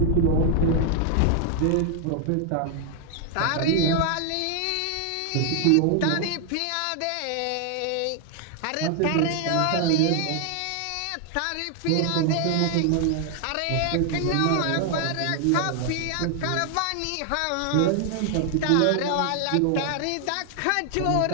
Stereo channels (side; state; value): both; different; correlation 0.00